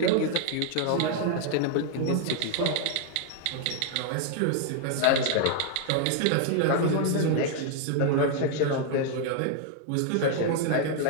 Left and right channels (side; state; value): both; different; correlation 0.00